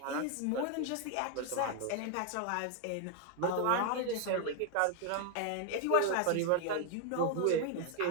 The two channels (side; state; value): both; different; correlation 0.00